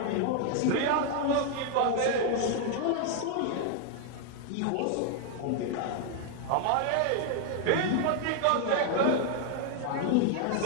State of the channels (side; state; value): both; different; correlation 0.00